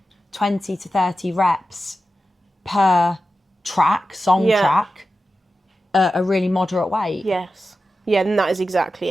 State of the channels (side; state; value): both; normal; correlation 0.92